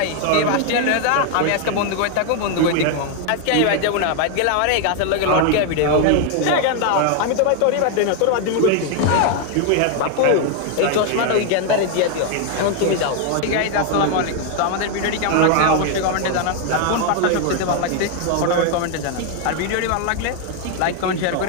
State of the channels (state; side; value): different; both; correlation 0.00